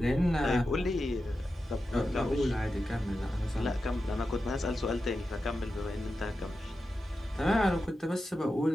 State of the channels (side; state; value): both; normal; correlation 0.91